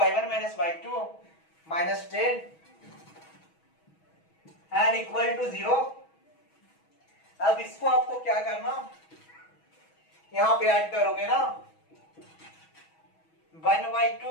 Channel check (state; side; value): late; right; 6.2 ms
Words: minus y2 -10 and equal to 0। अब इसको आपको क्या करना, यहां पे ऐड करोगे ना